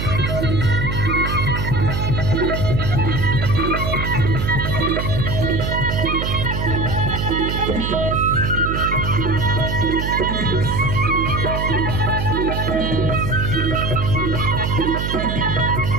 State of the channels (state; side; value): noise; right; hum, 2 dB below the sound